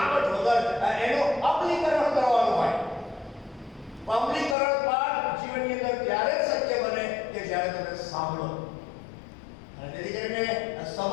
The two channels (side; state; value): right; drops out; at 4.5 s